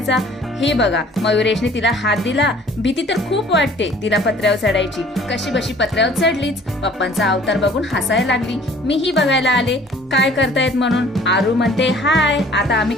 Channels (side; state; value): both; normal; correlation 0.52